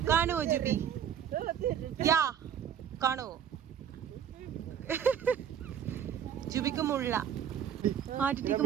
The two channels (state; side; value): quieter; left; 9.0 dB